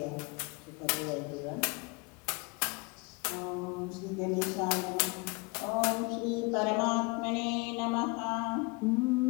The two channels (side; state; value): right; quieter; 28.1 dB